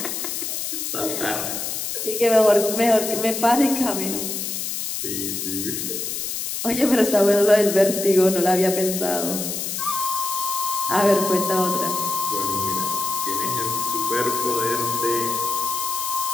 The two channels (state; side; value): noise; left; hiss, 4 dB below the sound